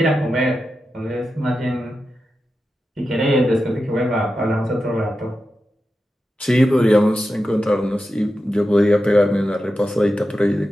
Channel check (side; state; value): both; normal; correlation 0.90